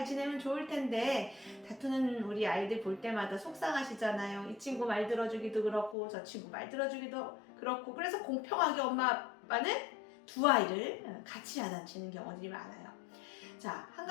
지내면 좋을 텐데 다투는 우리 아이들 볼 때마다 속상하시잖아요. 이 친구 말 들어주기도 그렇고 저 친구 말 들어주기도 그렇고, 그래서 공평하게 엄마 아빠는 두 아이를 같이 야단치는 경우들이 많아요. 자, 한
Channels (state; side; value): drops out; right; at 6.0 s